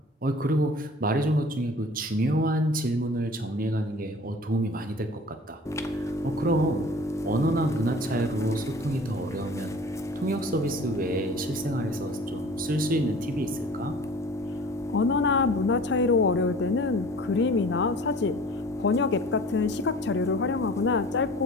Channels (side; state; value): both; normal; correlation 0.45